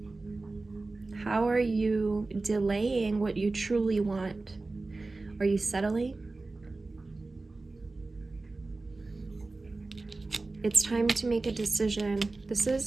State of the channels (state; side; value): quieter; left; 3.4 dB